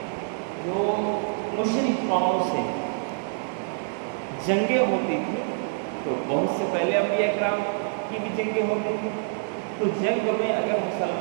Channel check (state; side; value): silent; left; 61 dB below the other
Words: جو مشرک قوموں سے جنگیں ہوتی تھیں، تو بہت سے پہلے انبیاء کرام کی بھی جنگیں ہوتی تھیں، تو جنگ میں اگر